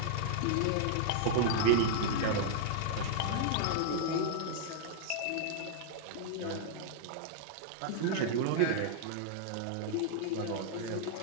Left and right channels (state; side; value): different; both; correlation -0.01